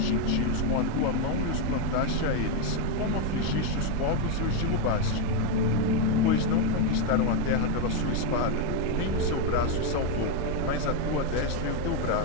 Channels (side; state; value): both; different; correlation 0.02